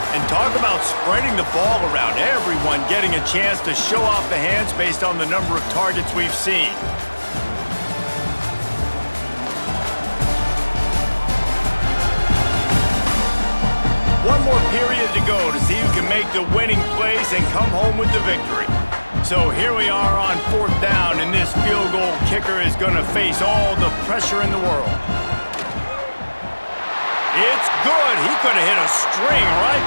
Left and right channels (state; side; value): inverted; both; correlation -1.00